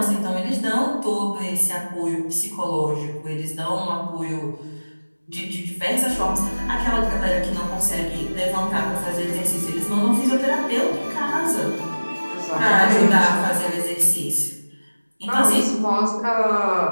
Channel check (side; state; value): both; inverted; correlation -1.00